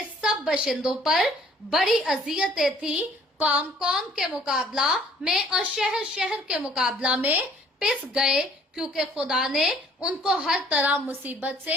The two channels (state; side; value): normal; both; correlation 0.57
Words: सब बशिंदों पर बड़ी अजियतें थी। कौम के मुकाबला में और शहर शहर के मुकाबला में पिस गए, क्योंकि खुदा ने उनको हर तरह मुसीबत